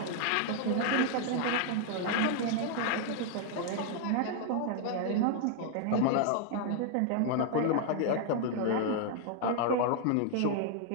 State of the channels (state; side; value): different; both; correlation 0.00